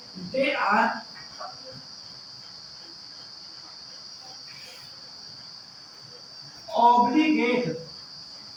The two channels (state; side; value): identical; both; correlation 1.00